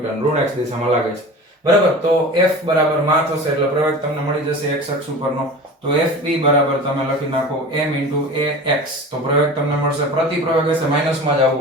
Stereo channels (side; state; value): both; normal; correlation 0.36